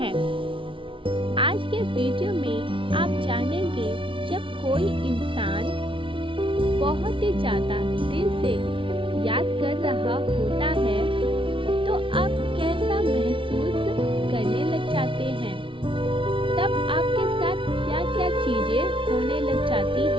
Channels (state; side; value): late; left; 0.25 ms